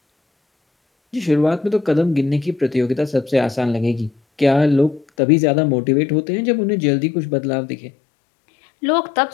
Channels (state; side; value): drops out; right; at 5.1 s